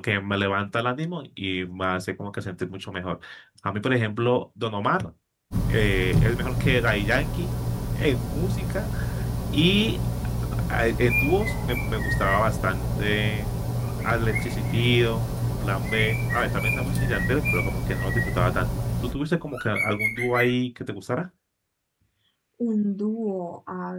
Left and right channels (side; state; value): both; identical; correlation 1.00